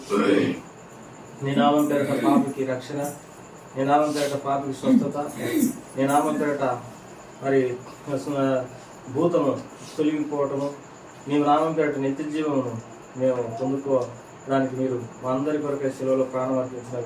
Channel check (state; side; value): identical; both; correlation 1.00